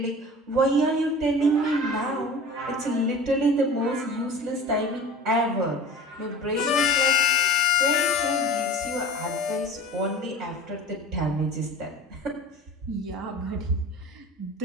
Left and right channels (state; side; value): normal; both; correlation 0.38